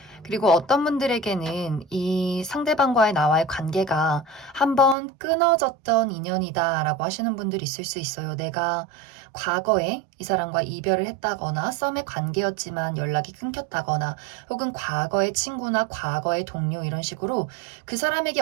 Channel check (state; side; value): drops out; left; at 5.0 s